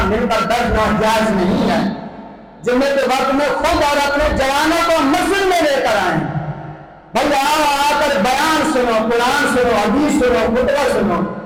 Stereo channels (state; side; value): identical; both; correlation 1.00